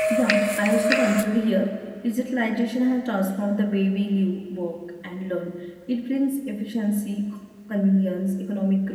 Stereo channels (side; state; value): both; identical; correlation 1.00